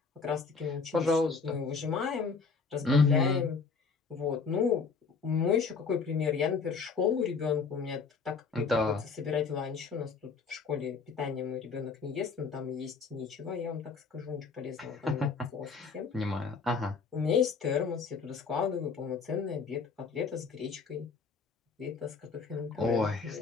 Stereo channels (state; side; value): quieter; right; 5.0 dB